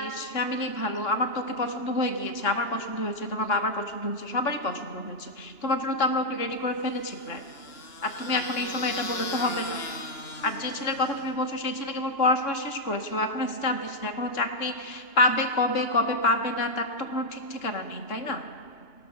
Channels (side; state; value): right; late; 2.9 ms